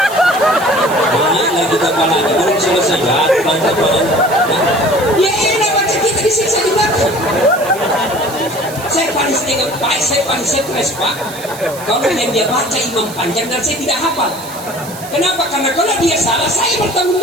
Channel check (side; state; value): right; noise; hiss, 15 dB below the sound